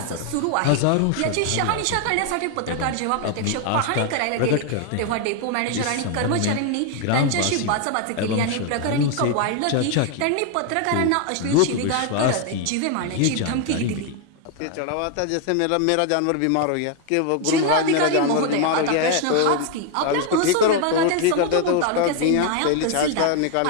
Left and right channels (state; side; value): different; both; correlation 0.01